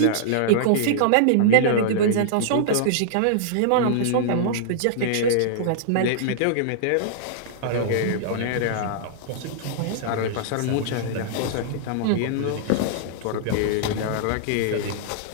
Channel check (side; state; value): both; different; correlation -0.02